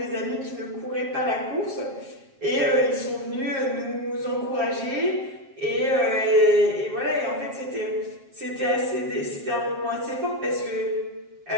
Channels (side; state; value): left; late; 7.4 ms